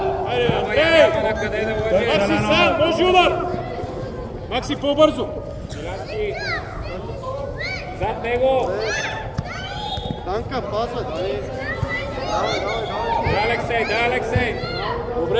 Айде, Андрей! Макси сам, може удар! Макси, по-бързо! Зад него! Танка, пасва, дай! Да, Алексей, да, Алексей!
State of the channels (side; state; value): both; identical; correlation 1.00